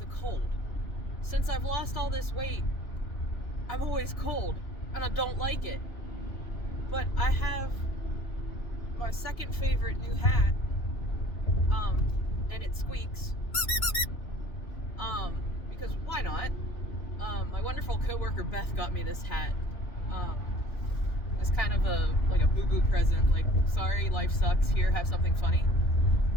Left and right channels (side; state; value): right; late; 2.9 ms